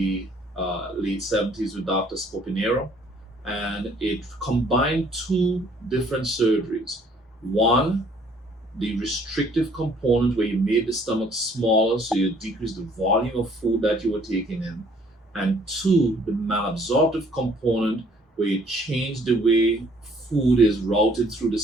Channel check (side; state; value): both; normal; correlation 0.60